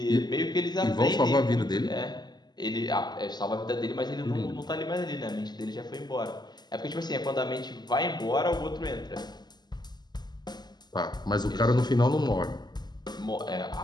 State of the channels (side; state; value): right; late; 0.21 ms